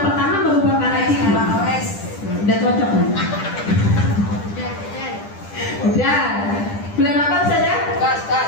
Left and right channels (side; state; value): right; late; 10 ms